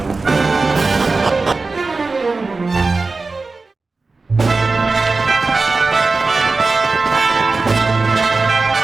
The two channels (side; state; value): left; quieter; 3.8 dB